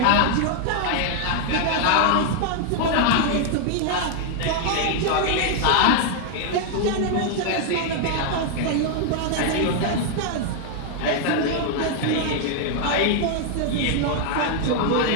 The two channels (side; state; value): both; different; correlation 0.00